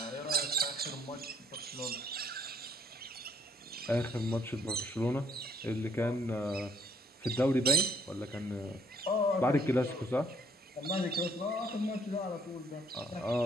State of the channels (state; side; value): normal; both; correlation 0.64